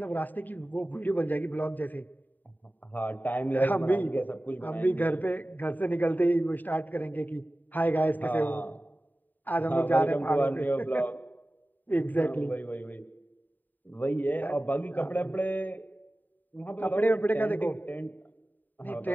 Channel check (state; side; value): late; right; 0.087 ms